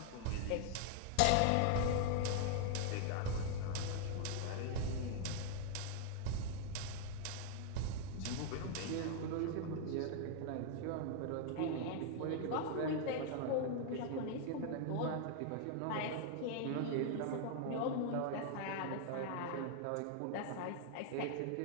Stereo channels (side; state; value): both; different; correlation 0.00